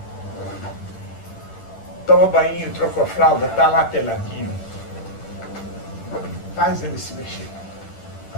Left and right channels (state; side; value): late; right; 10 ms